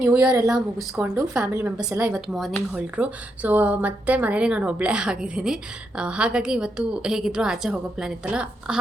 year ಎಲ್ಲ ಮುಗಿಸ್ಕೊಂಡು ಫ್ಯಾಮಿಲಿ ಮೆಂಬರ್ಸ್ ಎಲ್ಲ ಇವತ್ತು ಮಾರ್ನಿಂಗ್ ಹೊರಟರು. ಸೊ ಮತ್ತೆ ಮನೇಲಿ ನಾನು ಒಬ್ಬಳೇ ಆಗಿದ್ದೀನಿ. ಹಾಗಾಗಿ ಇವತ್ತು ಹೇಗಿದ್ರು ಆಚೆ ಹೋಗೋ ಪ್ಲ್ಯಾನ್ ಇತ್ತಲ್ಲ,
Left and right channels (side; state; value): both; normal; correlation 0.82